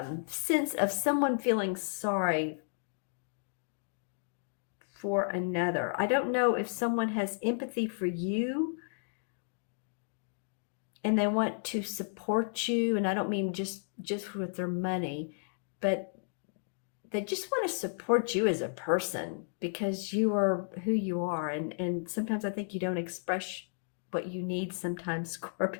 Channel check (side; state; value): right; silent; digital silence